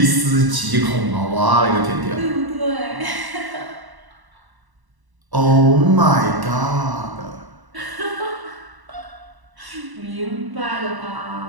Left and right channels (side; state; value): left; late; 1.0 ms